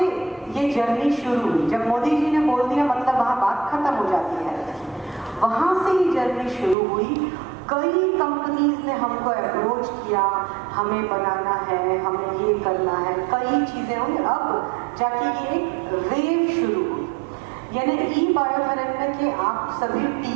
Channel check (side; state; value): left; drops out; at 6.8 s